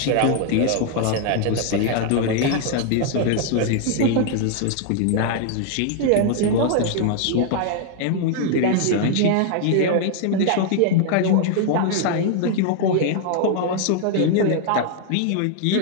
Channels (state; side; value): different; both; correlation 0.00